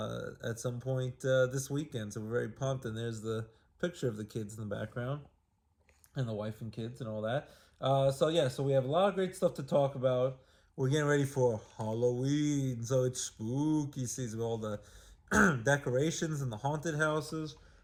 some point this weekend. So we're very pumped, and there's the picture of the kids in the background and the wife and kids and all that. So we have a lot of great stuff to talk about. We're getting ready for Halloween, so it's spooky season with all the decorations and the haunted houses.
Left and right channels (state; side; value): identical; both; correlation 1.00